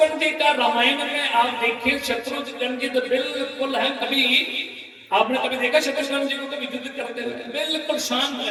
जी का रामायण में आप देखिए, शत्रुघ्न जी तो बिल्कुल है, कभी आपने कभी देखा शत्रुघ्न जी को कभी युद्ध करते हुए? बिल्कुल शांत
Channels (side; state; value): both; identical; correlation 1.00